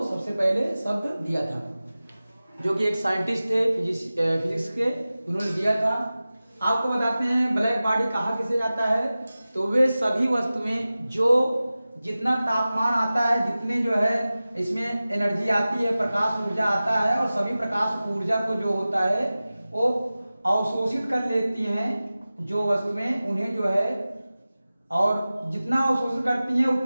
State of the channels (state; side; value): inverted; both; correlation -0.96